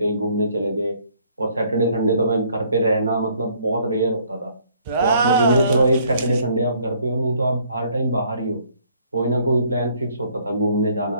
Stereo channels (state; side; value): inverted; both; correlation -0.63